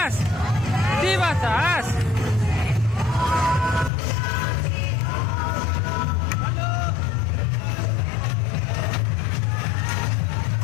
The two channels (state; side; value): drops out; right; at 3.9 s